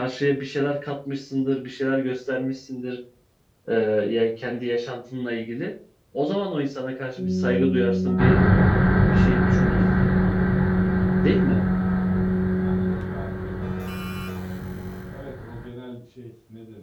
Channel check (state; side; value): identical; both; correlation 1.00